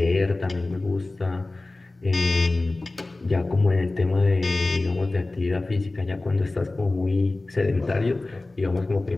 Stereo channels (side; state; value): right; quieter; 3.1 dB